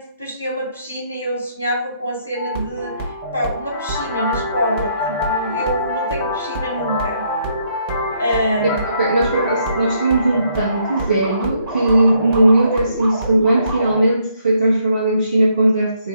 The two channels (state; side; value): inverted; both; correlation -0.72